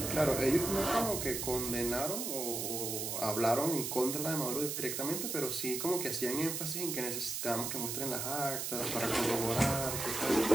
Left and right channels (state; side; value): noise; right; hiss, 3 dB below the sound